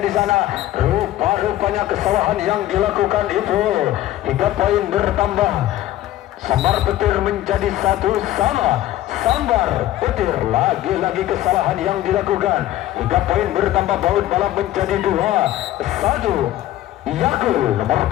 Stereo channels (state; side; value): quieter; right; 14.2 dB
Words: di sana. Rupa-rupanya kesalahan yang dilakukan itu hingga poin bertambah. Sambar Petir menjadi 1-1. Sambar Petir, lagi-lagi kesalahan yang dilakukan hingga poin bertambah. Baut Balap menjadi 2-1. Yakul nomor